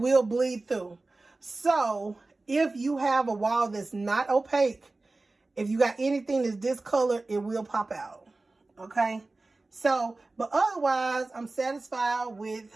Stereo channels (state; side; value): quieter; left; 3.3 dB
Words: bleed through. So if you have a wall that's not opaque, if you got anything that's discolored, it will pop out. Okay? So, but otherwise, I'm satisfied with